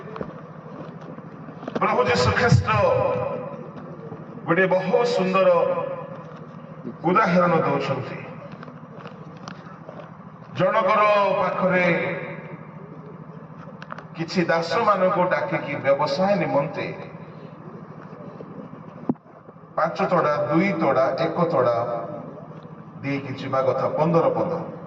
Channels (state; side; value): identical; both; correlation 1.00